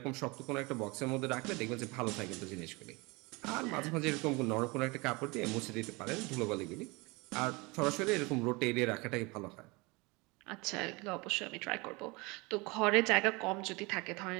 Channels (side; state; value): left; quieter; 25.8 dB